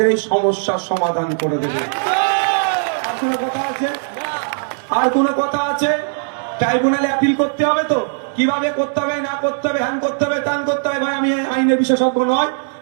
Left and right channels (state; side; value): silent; left; digital silence